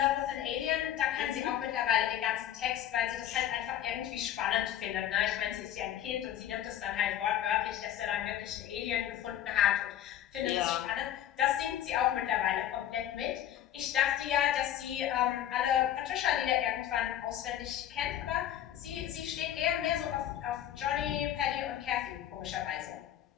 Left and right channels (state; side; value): quieter; right; 11.3 dB